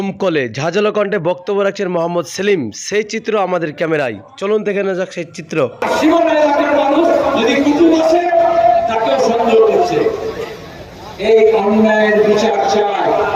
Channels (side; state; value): both; identical; correlation 1.00